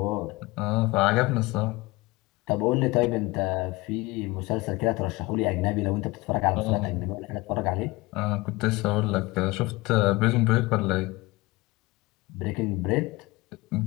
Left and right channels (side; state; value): right; quieter; 22.3 dB